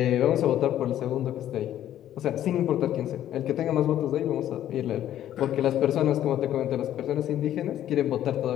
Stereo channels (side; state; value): right; quieter; 11.8 dB